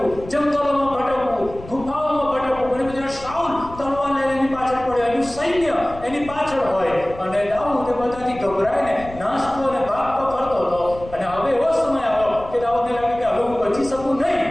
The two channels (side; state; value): left; noise; rumble, 16 dB below the sound